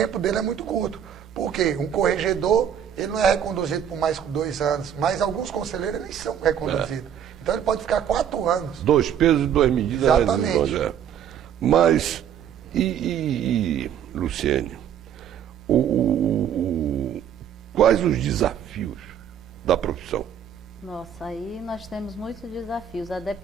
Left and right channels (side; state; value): left; quieter; 9.0 dB